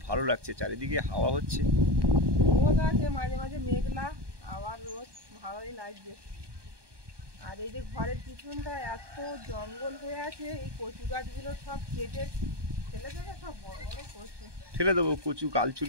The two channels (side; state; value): left; late; 1.2 ms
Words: ভালো লাগছে, চারিদিকে হাওয়া হচ্ছে, রোদ আছে, মাঝে মাঝে মেঘলা, আবার রোদ, ভালোই লাগছে। আর এই যে ঘরের পিছনটা এত জঙ্গল হয়ে আছে, এই কচু গাছগুলো সব কেটে ফেলে দেবে, সব বড় বড় কচু ফেলে দেবো। কচু গাল